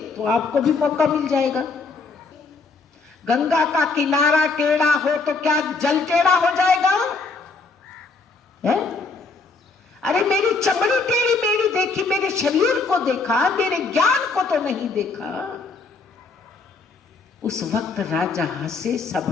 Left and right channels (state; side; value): quieter; right; 4.1 dB